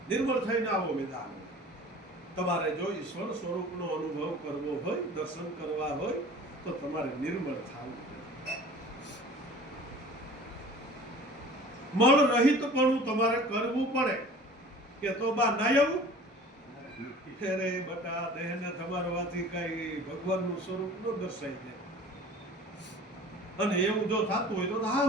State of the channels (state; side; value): normal; both; correlation 0.44